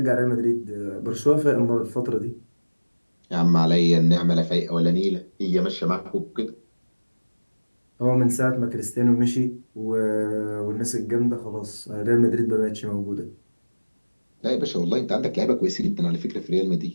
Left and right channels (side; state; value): both; inverted; correlation -1.00